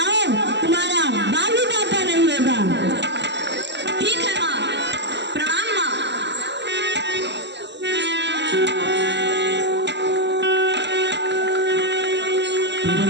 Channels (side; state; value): left; late; 0.51 ms